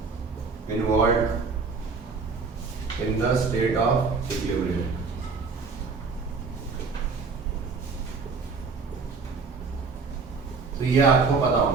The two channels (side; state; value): left; quieter; 4.7 dB